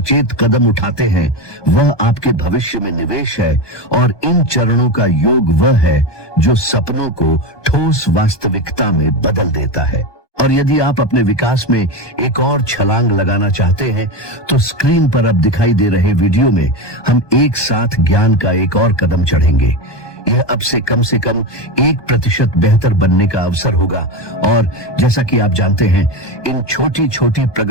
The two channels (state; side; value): late; right; 1.2 ms